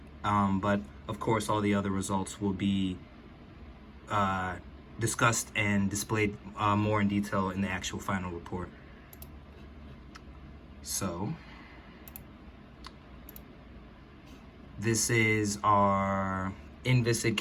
But of course, all the other results will be discussed and displayed more in detail in the actual final report. So this is our inviscid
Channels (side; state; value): both; identical; correlation 1.00